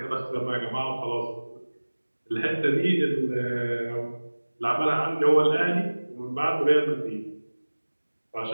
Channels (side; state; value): both; inverted; correlation -1.00